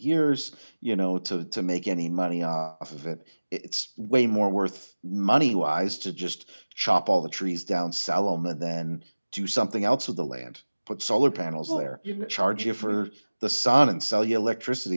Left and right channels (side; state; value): both; inverted; correlation -1.00